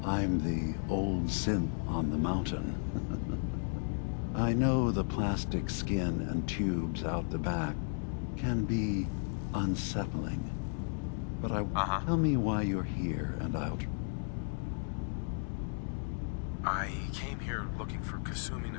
I'm the old synth on the mountain. I know the plastic skin and tubes out the back can be unsettling. But tell me why you're here and I'll... I came here looking for Kasumi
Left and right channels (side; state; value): right; silent; 55 dB below the other